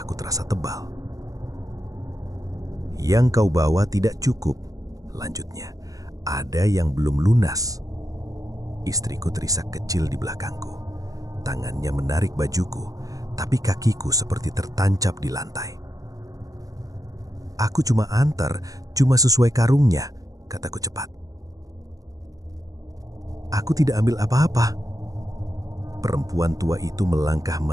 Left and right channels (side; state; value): left; late; 0.17 ms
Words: terasa tebal. "Yang kau bawa tidak cukup," lanjutnya. "Ada yang belum lunas." Istriku terisak kecil di belakangku. Tangannya menarik bajuku, tapi kakiku seperti tertancap di lantai. "Aku cuma antar, cuma sesuai karungnya," kataku cepat. "Aku tidak ambil apa-apa." Perempuan tua itu melangkah